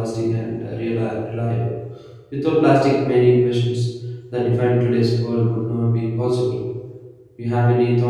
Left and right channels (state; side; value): identical; both; correlation 1.00